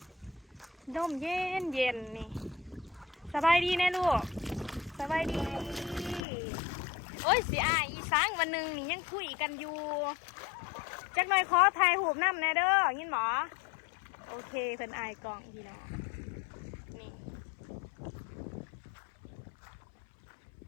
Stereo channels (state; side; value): drops out; right; at 6.2 s